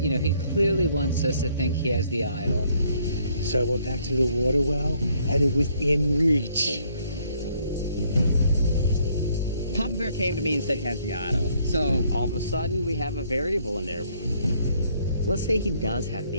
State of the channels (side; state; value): both; inverted; correlation -0.66